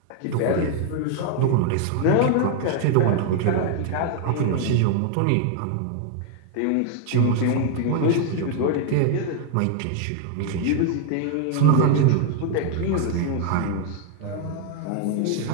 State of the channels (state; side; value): different; both; correlation 0.00